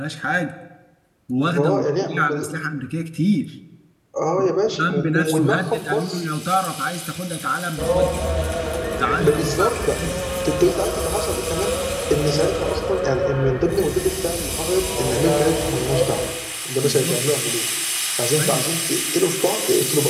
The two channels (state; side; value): identical; both; correlation 1.00